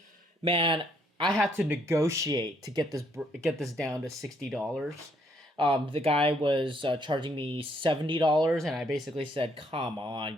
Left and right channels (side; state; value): both; normal; correlation 0.69